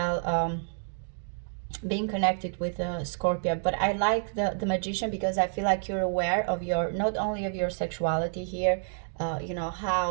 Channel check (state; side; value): silent; left; digital silence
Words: being connected with Scorpio, but I like the Magician because I feel like you're aware of your, not only of your sexuality here, you know,